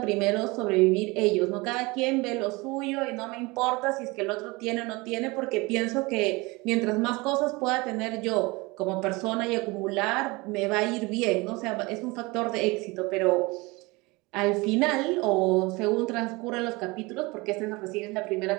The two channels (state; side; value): quieter; left; 24.3 dB